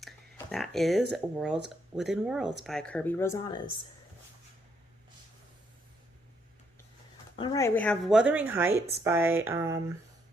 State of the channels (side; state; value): both; normal; correlation 0.73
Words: That is Worlds Within Worlds by Kirby Rosanna's. All right, we have Wuthering Heights by